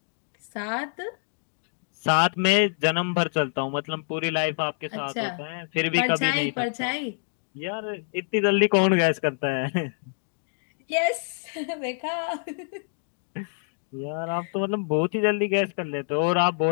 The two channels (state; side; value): silent; right; digital silence